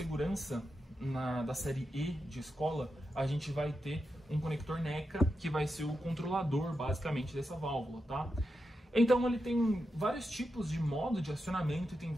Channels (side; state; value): both; normal; correlation 0.87